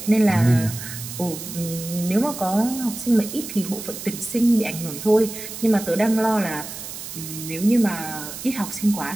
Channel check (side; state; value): right; noise; hiss, 10 dB below the sound